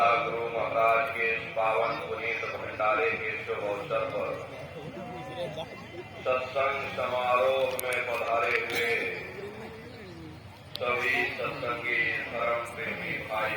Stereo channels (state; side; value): identical; both; correlation 1.00